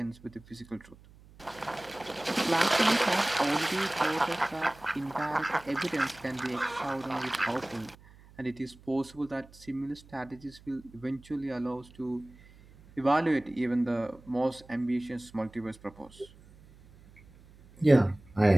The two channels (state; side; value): noise; right; hum, 24 dB below the sound